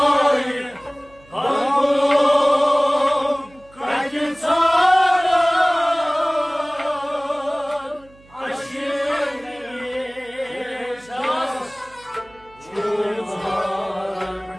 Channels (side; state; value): right; noise; hum, 27 dB below the sound